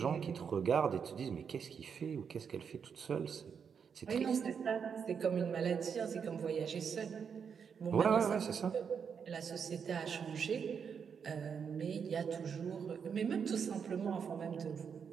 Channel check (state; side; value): quieter; left; 6.8 dB